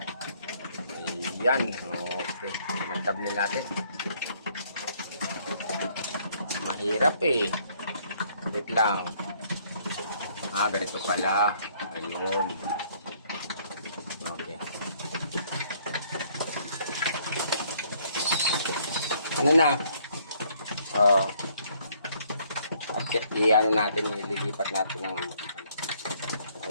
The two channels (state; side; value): inverted; both; correlation -0.65